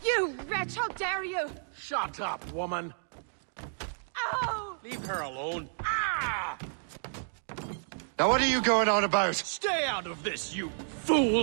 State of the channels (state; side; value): silent; left; digital silence